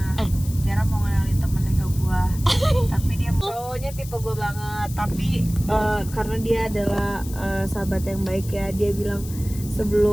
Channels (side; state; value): left; noise; hiss, 16 dB below the sound